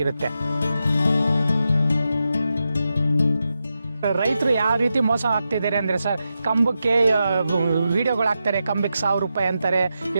ರೈತರು ಯಾವ ರೀತಿ ಮೋಸ ಆಗ್ತಿದ್ದಾರೆ ಅಂದರೆ ಸರ್, ಕಂಬಕ್ಕೆ ವಿಡಿಯೋಗಳು ಹಾಕ್ತಾರೆ, ಕಂಬಕ್ಕೆ 1000 ರೂಪಾಯಿ ಅಂತಾರೆ,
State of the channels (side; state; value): both; inverted; correlation -0.88